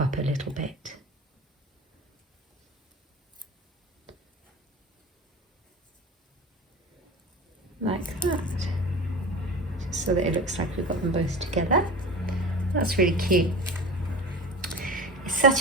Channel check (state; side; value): normal; both; correlation 0.33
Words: a little bit. Like that. Just so that it looks like we've got them both together. That's really cute. It's